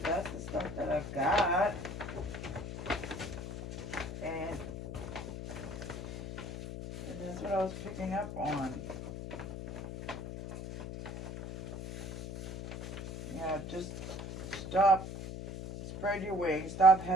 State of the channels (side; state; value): left; noise; hum, 7 dB below the sound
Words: that's the stuff that I've got. And that's what I was picking up on. Yeah, just stop, spread your wings, stop